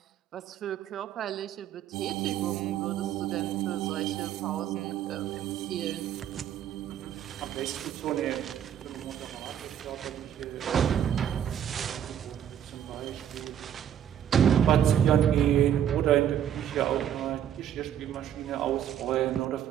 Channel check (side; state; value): left; quieter; 9.9 dB